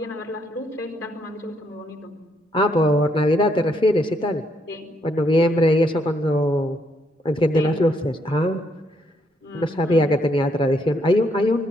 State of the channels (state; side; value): normal; both; correlation 0.73